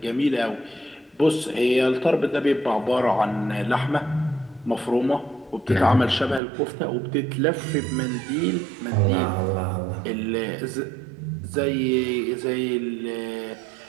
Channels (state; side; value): drops out; left; at 6.4 s